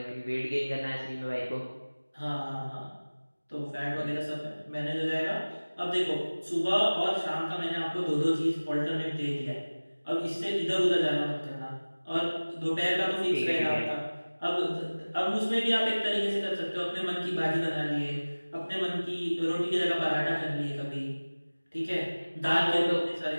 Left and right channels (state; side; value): inverted; both; correlation -1.00